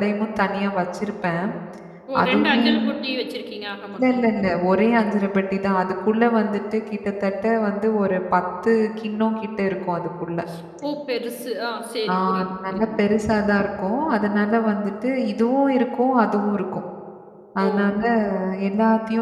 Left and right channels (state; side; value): identical; both; correlation 1.00